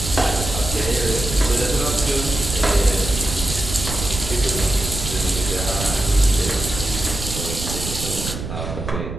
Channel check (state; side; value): noise; right; rumble, 6 dB below the sound